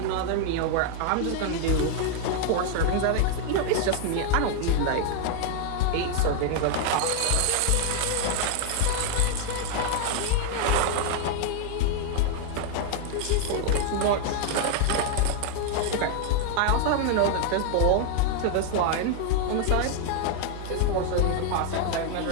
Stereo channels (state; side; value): different; both; correlation 0.00